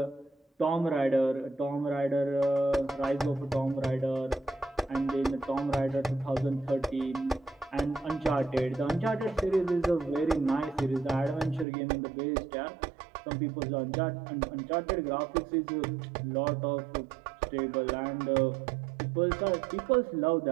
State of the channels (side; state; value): left; drops out; at 11.7 s